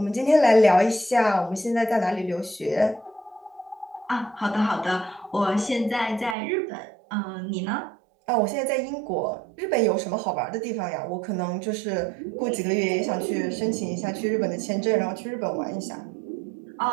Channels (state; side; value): drops out; left; at 6.4 s